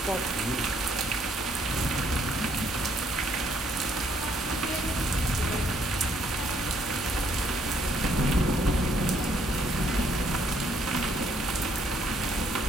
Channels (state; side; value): normal; both; correlation 0.68